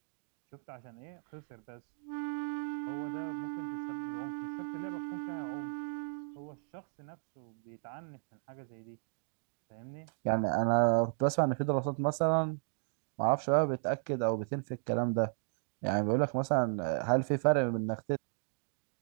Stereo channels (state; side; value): silent; left; digital silence